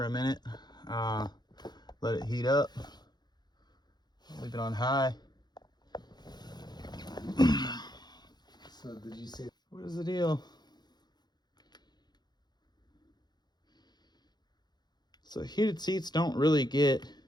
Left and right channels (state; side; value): late; right; 0.20 ms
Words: a minute. Let it heat up. Leave it on high. So did you say? What is the deal? So heated seats don't really get